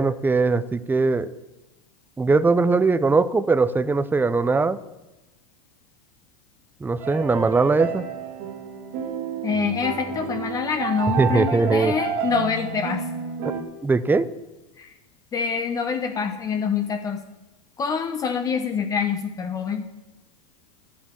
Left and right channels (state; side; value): normal; both; correlation 0.67